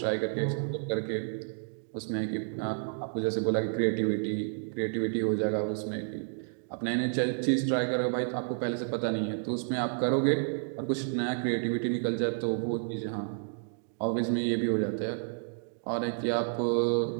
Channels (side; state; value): left; silent; digital silence